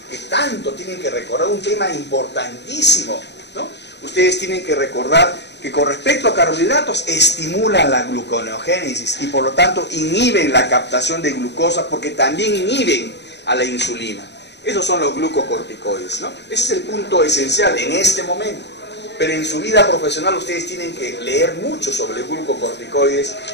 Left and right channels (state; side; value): late; right; 0.50 ms